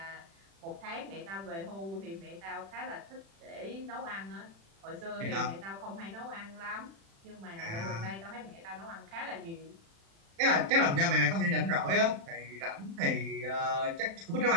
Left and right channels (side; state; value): left; late; 36 ms